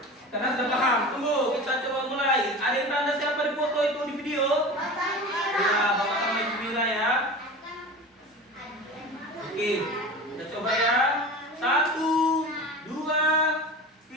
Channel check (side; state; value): both; normal; correlation 0.33